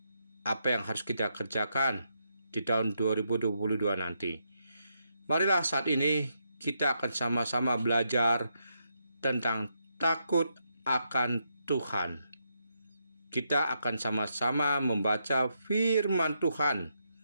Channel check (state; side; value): inverted; both; correlation -0.80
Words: Apa yang harus kita kerjakan di tahun 2022 nanti? Marilah saat ini kita akan sama-sama belajar tentang takut akan Tuhan. Kita akan sama-sama membaca firman Tuhan